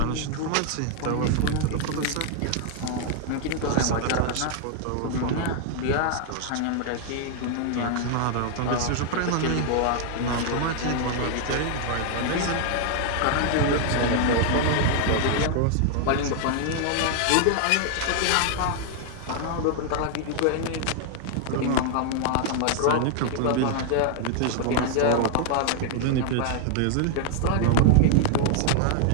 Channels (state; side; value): different; both; correlation 0.00